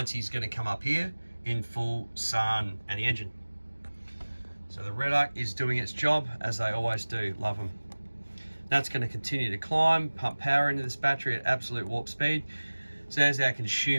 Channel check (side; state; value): both; inverted; correlation -1.00